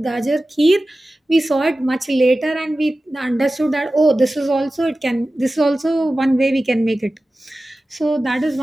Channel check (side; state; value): both; normal; correlation 0.95